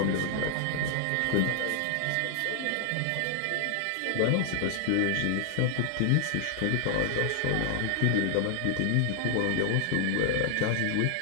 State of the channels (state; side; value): different; both; correlation 0.00